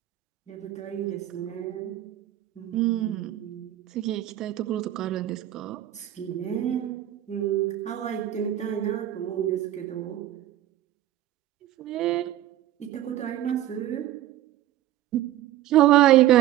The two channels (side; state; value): left; quieter; 13.5 dB